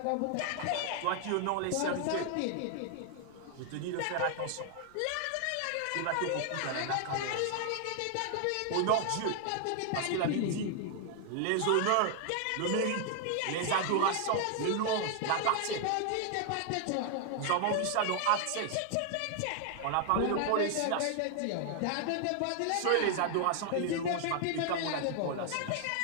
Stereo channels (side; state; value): both; different; correlation 0.00